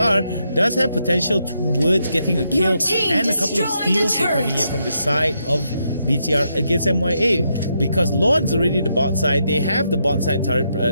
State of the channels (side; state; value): both; inverted; correlation -0.80